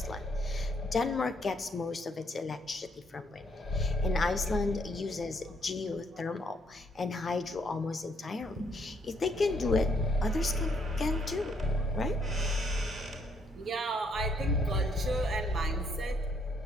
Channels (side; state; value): both; normal; correlation 0.71